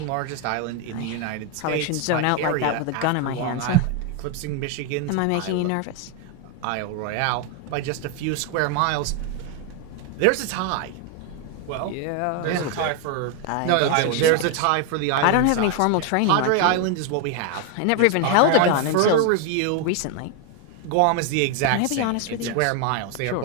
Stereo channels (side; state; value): both; different; correlation 0.01